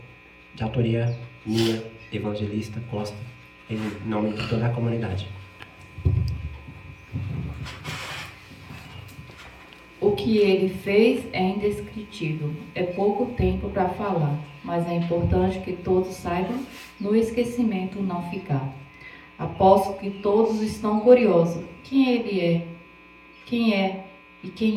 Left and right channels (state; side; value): identical; both; correlation 1.00